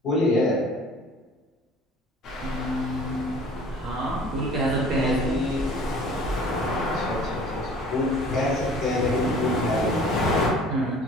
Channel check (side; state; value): both; normal; correlation 0.48